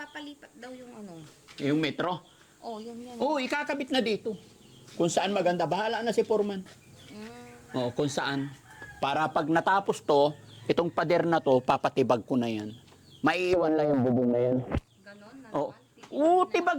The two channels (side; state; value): both; identical; correlation 1.00